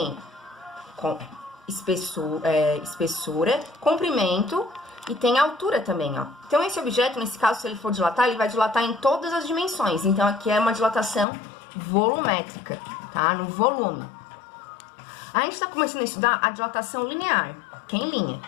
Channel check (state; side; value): drops out; right; at 11.2 s